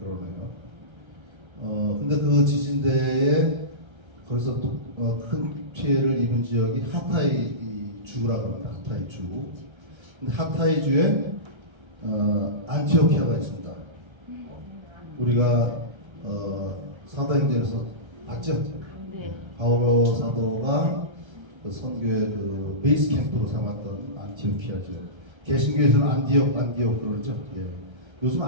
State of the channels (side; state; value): left; late; 1.3 ms